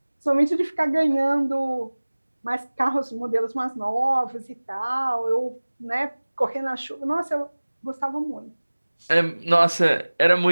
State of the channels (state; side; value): inverted; both; correlation -1.00